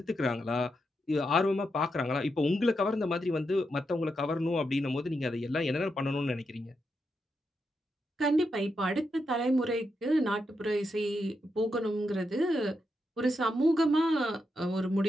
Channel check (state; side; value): normal; both; correlation 0.84